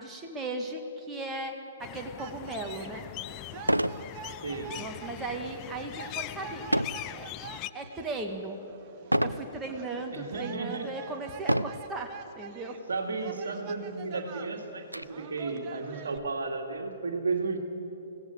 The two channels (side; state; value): both; inverted; correlation -0.61